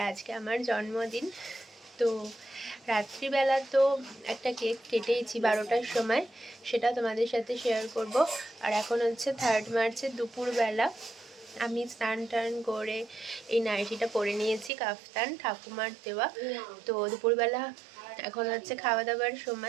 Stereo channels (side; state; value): left; drops out; at 14.7 s